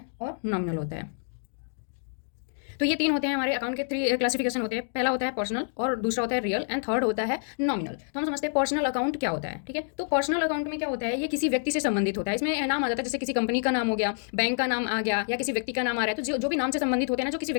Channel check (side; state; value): right; silent; digital silence